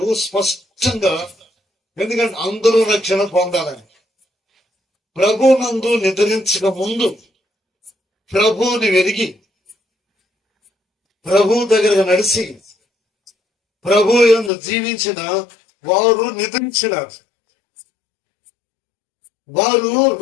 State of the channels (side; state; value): right; drops out; at 14.5 s